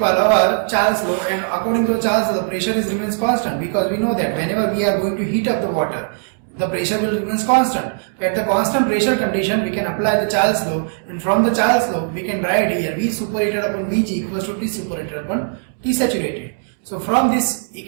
our Charles law, and according to Charles law, the pressure remains constant, because we know that whenever we are going to heat up the water, the pressure will remain constant. At the constant pressure condition, we can apply the Charles law, and from the Charles law, we can write here V superheated upon Vg equals to T superheated upon T saturated. So from this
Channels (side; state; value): left; silent; 66 dB below the other